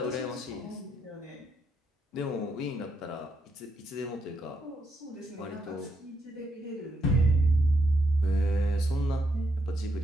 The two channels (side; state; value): both; normal; correlation 0.78